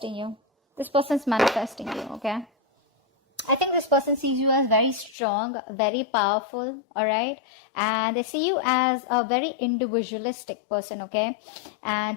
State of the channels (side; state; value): right; drops out; at 5.2 s